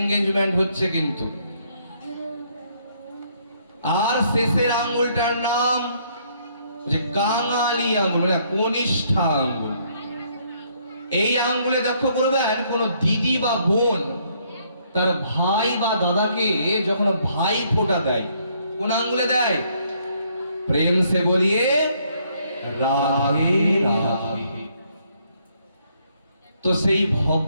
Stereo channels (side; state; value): both; inverted; correlation -0.68